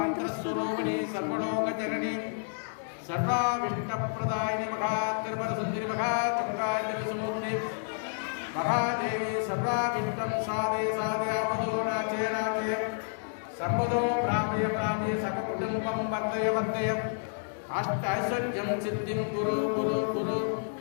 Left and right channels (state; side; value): silent; right; 58 dB below the other